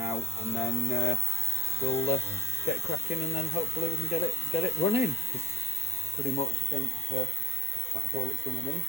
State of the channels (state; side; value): normal; both; correlation 0.66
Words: and then we'll get cracking, and then hopefully we can get it running. Because pretty much I think that's all it's going to need